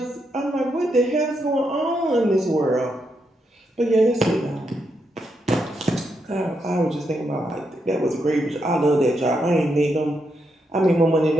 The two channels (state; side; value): normal; both; correlation 0.81